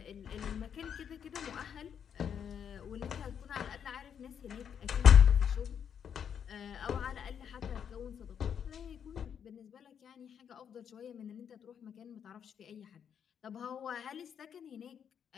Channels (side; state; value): right; quieter; 8.1 dB